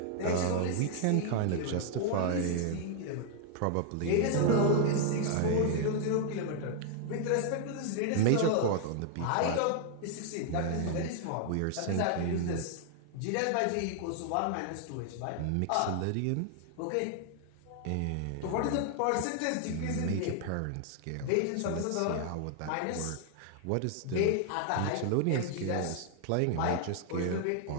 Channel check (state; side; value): different; both; correlation 0.00